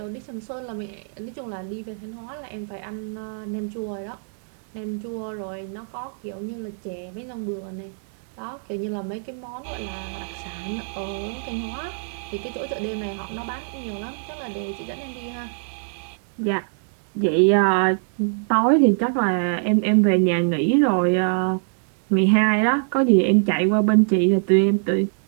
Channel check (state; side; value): silent; left; digital silence